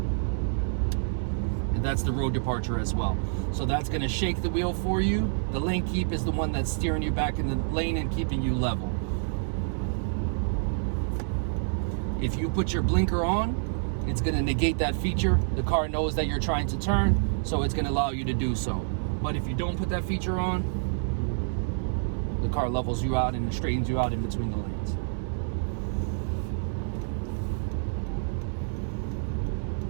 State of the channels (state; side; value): silent; left; digital silence